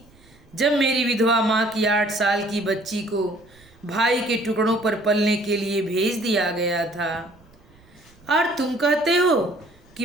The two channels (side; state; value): right; noise; rumble, 28 dB below the sound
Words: जब मेरी विधवा माँ की 8 साल की बच्ची को भाई के टुकड़ों पर पलने के लिए भेज दिया गया था? और तुम कहते हो कि